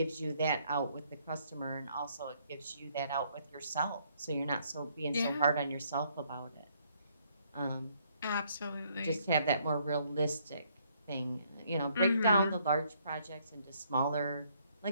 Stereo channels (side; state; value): both; inverted; correlation -0.68